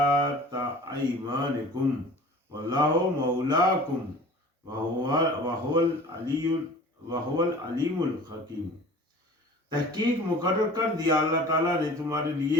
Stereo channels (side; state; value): both; normal; correlation 0.43